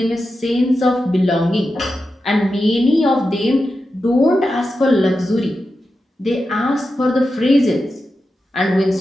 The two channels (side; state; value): both; normal; correlation 0.90